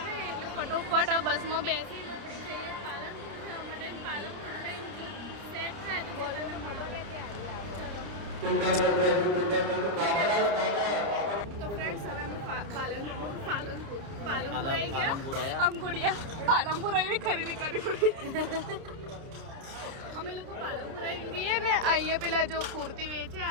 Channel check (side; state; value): left; late; 30 ms